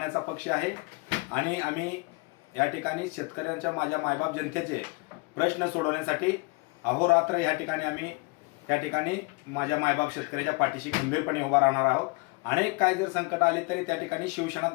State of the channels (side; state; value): right; quieter; 28.1 dB